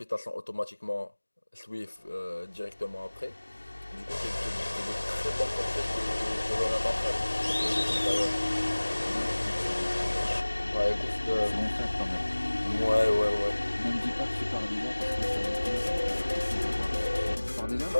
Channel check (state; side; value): inverted; both; correlation -1.00